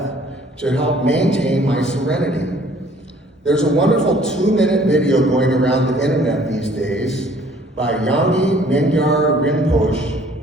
to help maintain my serenity. There's a wonderful 2-minute video going around the internet these days by Yangi Mingyar Rinpoche,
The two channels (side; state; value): both; normal; correlation 0.57